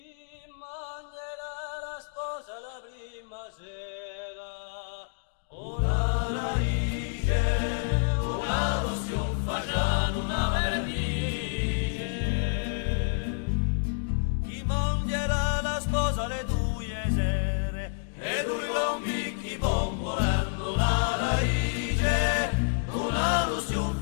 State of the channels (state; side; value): silent; right; digital silence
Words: mangerà la sposa la prima sera? Una raice, una lozione facciano una vernice. Chi mangerà la sposa le due sere? E due gombicchi bombolando una raice, una lozione